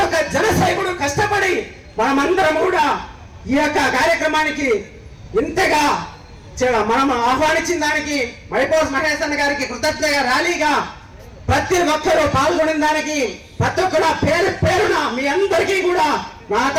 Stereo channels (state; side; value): identical; both; correlation 1.00